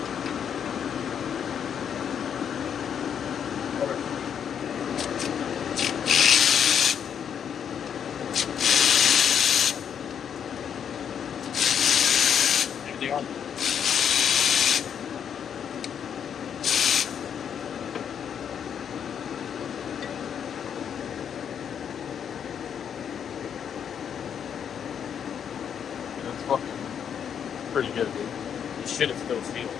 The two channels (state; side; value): quieter; right; 8.1 dB